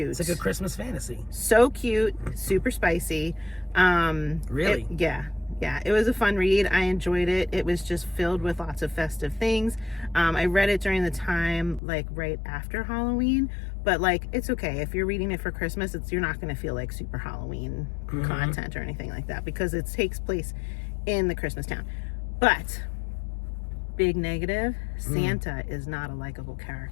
It's like a Christmas fantasy. So cute, super spicy. Really? Yeah. Yeah, it was a fun read. I enjoyed it. It was just filled with lots of festive things. I read it during the time, like right after Halloween, but like it's okay if you're reading it for Christmas. You're not going to feel like super Halloween content or anything like that because it takes place in the Christmas town. But big negative, Santa is not a likable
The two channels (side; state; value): right; drops out; at 11.8 s